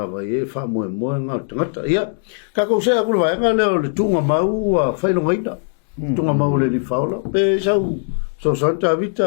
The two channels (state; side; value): silent; right; digital silence